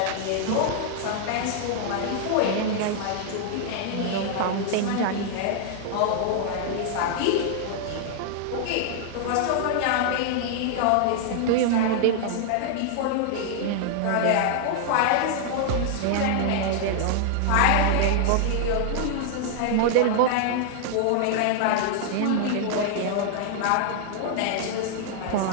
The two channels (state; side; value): different; both; correlation -0.01